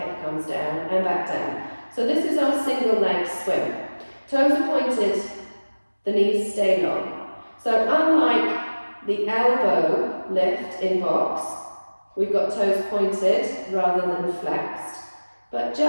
comes down and back down. So this is our single leg swing. Toes are pointed, the knees stay long. So unlike the elbow lift in box, we've got toes pointed rather than flexed. But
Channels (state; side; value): inverted; both; correlation -1.00